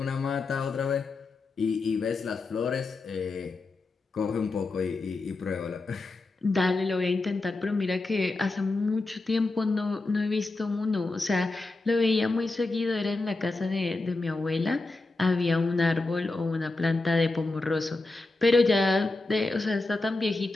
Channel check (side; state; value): right; quieter; 3.3 dB